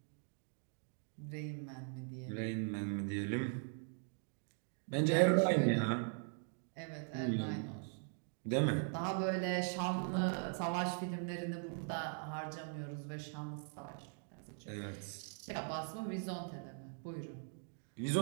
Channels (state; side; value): silent; left; 51 dB below the other